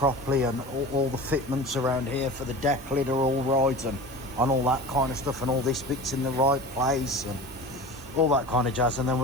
and all the fitments around here for the deck lid are all right, and all that kind of stuff, and all this bit's in the right place, and all that kind of jazz. And then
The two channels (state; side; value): normal; both; correlation 0.34